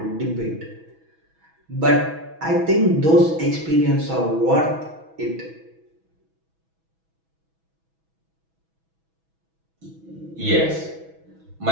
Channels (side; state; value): left; late; 6.1 ms